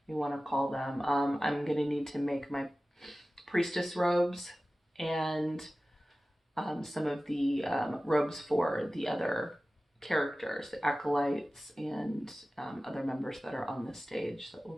you want to call them. I'm going to need to make my priestess robes and some of the robes for the other characters, the acolytes, and other members that are on the stage that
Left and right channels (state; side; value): normal; both; correlation 0.96